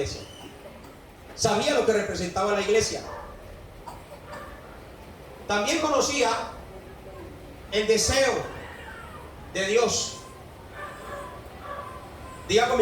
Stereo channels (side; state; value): both; identical; correlation 1.00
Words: Sabía lo que representaba la iglesia. También conocía el deseo de Dios. Diga